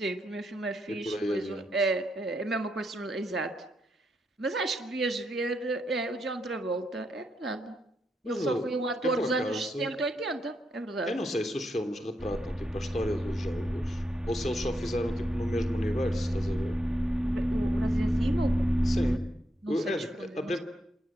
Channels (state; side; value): normal; both; correlation 0.81